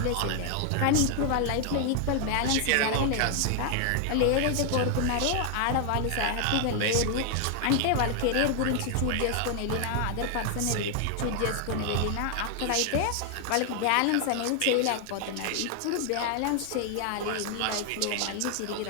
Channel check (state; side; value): different; both; correlation 0.00